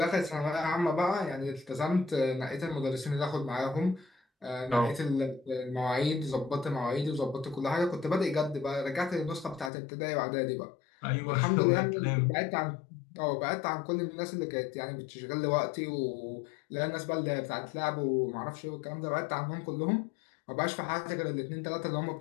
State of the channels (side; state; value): right; drops out; at 9.7 s